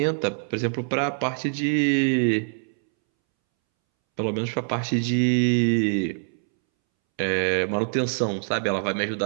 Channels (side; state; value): left; silent; 62 dB below the other